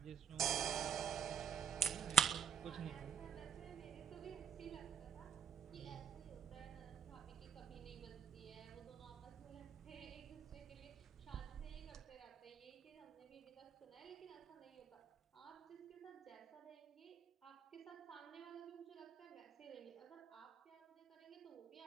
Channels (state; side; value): quieter; left; 7.0 dB